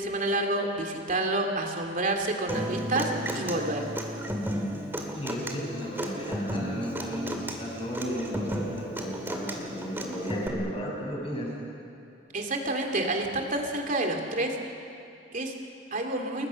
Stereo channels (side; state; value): both; normal; correlation 0.29